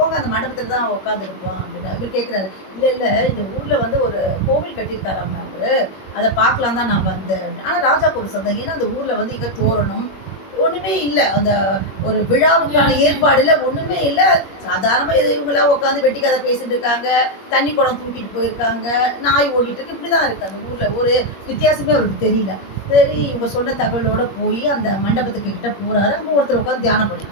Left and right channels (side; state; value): right; late; 21 ms